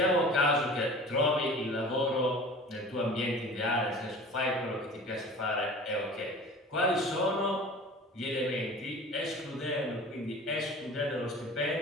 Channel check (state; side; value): normal; both; correlation 0.41